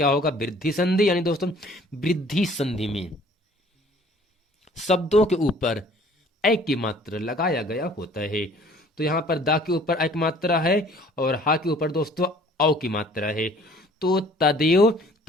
होगा, वृद्धि संधि। यानी दोस्तों वृद्धि संधि में शब्दों के ऊपर ए की मात्रा लगाया गया होता है। तो यहाँ पर दा के ऊपर ए की मात्रा है और हा के ऊपर दोस्तों औ की मात्रा है। तो तदेव,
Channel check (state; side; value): normal; both; correlation 0.54